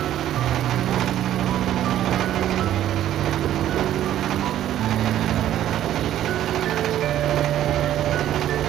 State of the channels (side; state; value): left; quieter; 12.1 dB